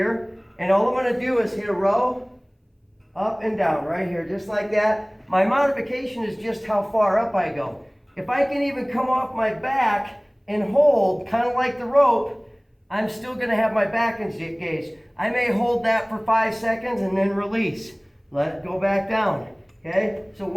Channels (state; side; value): identical; both; correlation 1.00